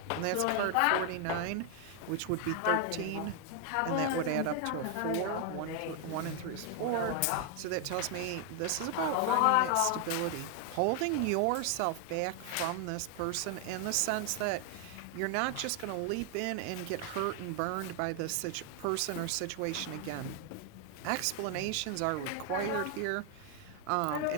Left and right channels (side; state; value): both; different; correlation 0.00